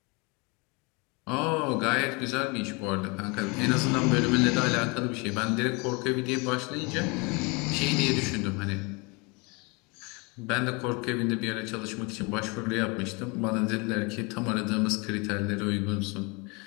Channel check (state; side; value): quieter; right; 28.7 dB